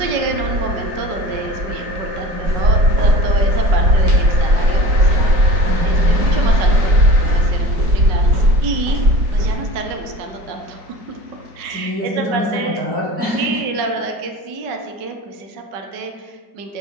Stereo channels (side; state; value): left; late; 5.3 ms